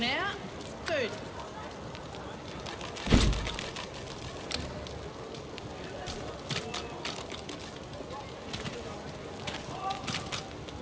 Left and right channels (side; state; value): both; identical; correlation 1.00